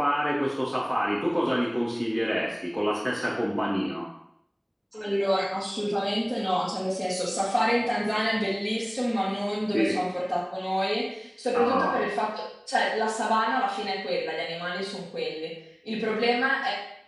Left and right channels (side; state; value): both; identical; correlation 1.00